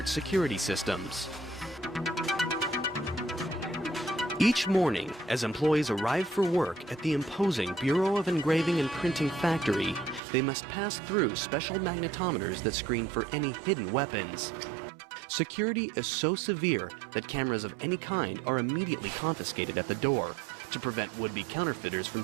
security systems. Each morning, as employees arrive for work at the imposing Bureau of Engraving and Printing factory, they must pass through special magnetometers that screen for any hidden weapons. Security is so severe that cameras of any kind are immediately confiscated at the door to prevent would-be counterfeiters from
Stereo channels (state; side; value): drops out; left; at 10.2 s